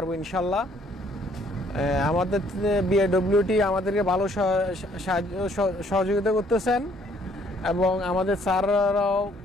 ইনশাল্লাহ। আমাদের বিএডব্লিউটি আমাদেরকে ভালো সহযোগিতা করতেছেন এবং আমাদের স্যাররাও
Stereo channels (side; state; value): both; normal; correlation 0.64